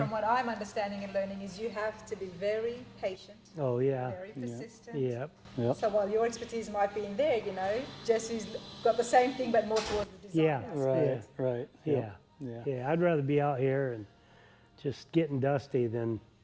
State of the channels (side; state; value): both; identical; correlation 1.00